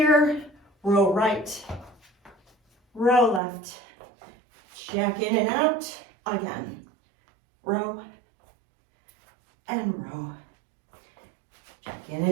Row right, row left, jack in and out, again, row and row, jack in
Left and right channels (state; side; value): drops out; left; at 3.4 s